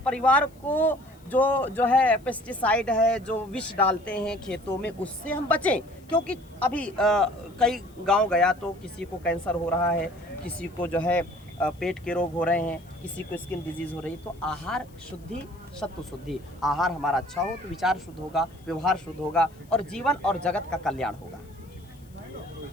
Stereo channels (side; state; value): left; noise; hiss, 30 dB below the sound